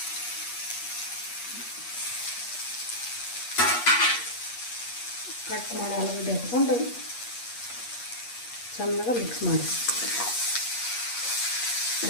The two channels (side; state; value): right; late; 8.4 ms